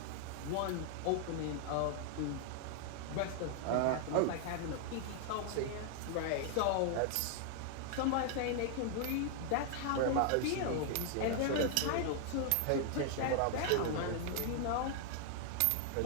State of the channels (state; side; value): different; both; correlation 0.00